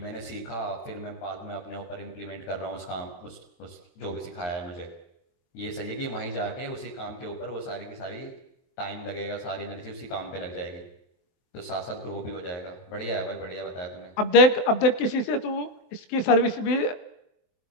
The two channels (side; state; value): right; late; 23 ms